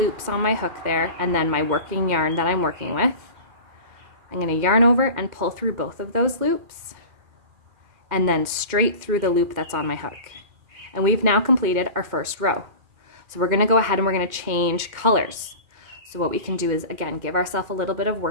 on my hook there, and then my working yarn that I'm working with. I'm going to yarn over and pull through both of those loops, and then straight through the loop that's on my hook. And we've now completed our first row. So we're going to go ahead and we're going to change colors. So what we can do is, again, give ourselves a little bit of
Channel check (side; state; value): left; late; 2.4 ms